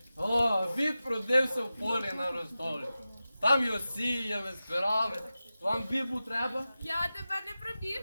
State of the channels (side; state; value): both; inverted; correlation -0.94